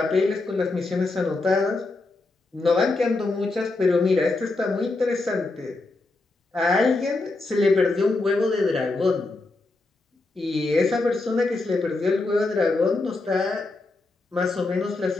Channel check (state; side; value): quieter; right; 3.3 dB